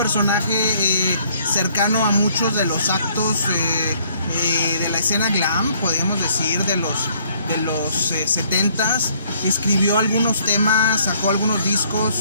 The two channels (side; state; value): both; inverted; correlation -0.63